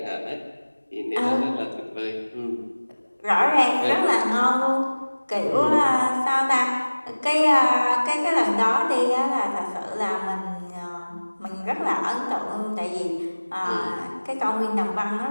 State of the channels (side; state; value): both; inverted; correlation -1.00